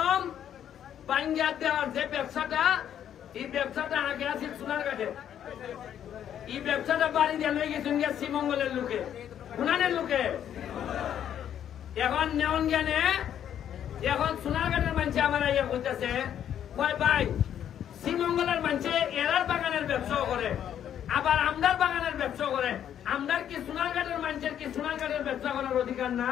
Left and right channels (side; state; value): right; quieter; 9.9 dB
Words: বাঙ্গা দেওয়ার যে ব্যবসাটা, এই ব্যবসাটা আগে আছে সোনারঘাটে। এই ব্যবসাটা বাড়ি দিয়ে লই গেছেন শ্রীমঙ্গলের লোকে, গুনানের লোকে। এখন নেওয়ান জ্ঞানে এখন সোনারঘাটের মানুষ আমার ইয়ে করতেছে, কয় ভাই শ্রীমঙ্গলের মানুষে এরার বাগানের ব্যবসাও করে, আবার আমদার বাগানের ব্যবসা করে। আমদার কি সোনারঘাটের মানুষের কি সোনারঘাটের ব্যবসা করার অধিকার